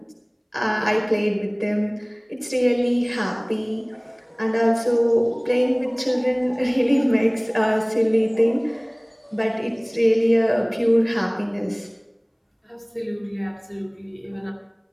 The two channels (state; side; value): identical; both; correlation 1.00